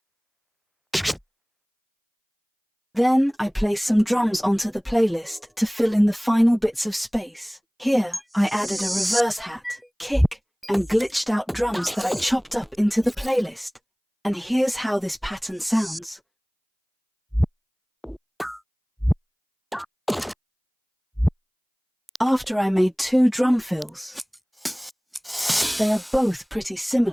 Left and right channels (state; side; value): identical; both; correlation 1.00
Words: Then I placed some drums onto the playlist to fill in the final bits of space. Here I added a reverse hat, kick, and glitched out drums that I chopped up into the playlist. And here's how this pattern sounds. After I made 2 drum fills. They are both pretty